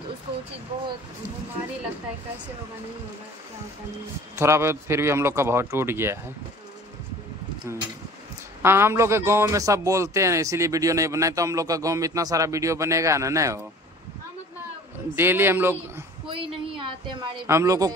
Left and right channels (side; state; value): both; normal; correlation 0.46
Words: तो उसको वो चीज बहुत भारी लगता है, कैसे होगा, नहीं होगा, क्या होता नहीं। थोड़ा बहुत फिर भी हम लोग का बहुत टूट गया है। हाँ हम लोग के गांव में सब बोलते हैं, इसीलिए वीडियो नहीं बनाए। तो हम लोग का गांव में इतना सारा वीडियो बनेगा ना, नहीं हो डेली हम लोग, कोई नहीं आते हमारे, हम लोग को